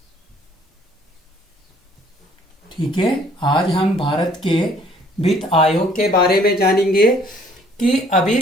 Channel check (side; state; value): both; normal; correlation 0.60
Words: ठीक है, आज हम भारत के वित्त आयोग के बारे में जानेंगे कि अभी